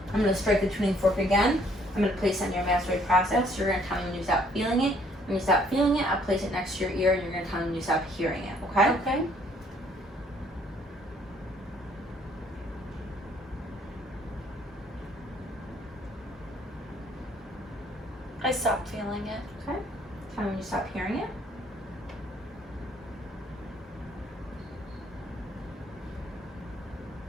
I'm going to strike the tuning fork again. I'm going to place it on your mastoid process. You're going to tell me when you stop feeling it. When you stop feeling it, I'll place it next to your ear, and you're going to tell me when you stop hearing it, okay? Okay. I stopped feeling it. Okay. Tell me when you stop hearing it.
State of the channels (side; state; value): both; normal; correlation 0.63